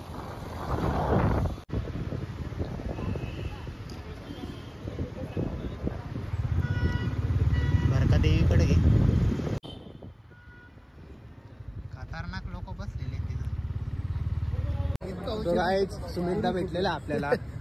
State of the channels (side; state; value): both; identical; correlation 1.00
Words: भरका देवीकडे घे. खतरनाक लोक बसलेले तो गाईज सुमितदा भेटलेला आपल्याला.